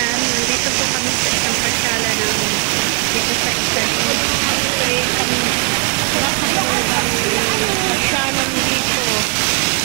nandito po kami sa isang pasyala ng dito sa Italy. Ito ay kami napakagandang pasyalan dito.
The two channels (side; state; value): left; quieter; 36.4 dB